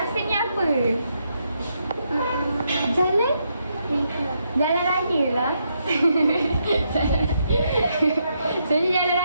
ni apa? Jalan? Jalan raya lah. So ni jalan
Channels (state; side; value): inverted; both; correlation -0.79